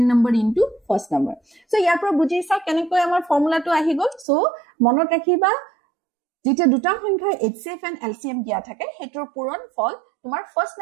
number into first number so yar pro bujhi sa kenekoi amar formula tu ahi gol so monot rakhiba যেটা দুটা সংখ্যা HCF and LCM দিয়া থাকে হেতৰ পূৰণ ফল তোমাৰ first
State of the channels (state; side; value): drops out; left; at 4.2 s